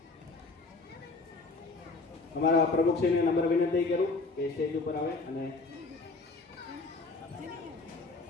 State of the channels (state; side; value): quieter; right; 3.7 dB